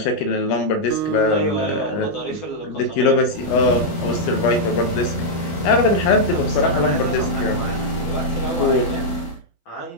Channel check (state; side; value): late; right; 12 ms